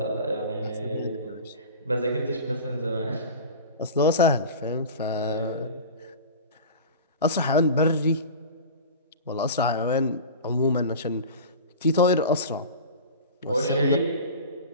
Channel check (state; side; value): inverted; both; correlation -0.34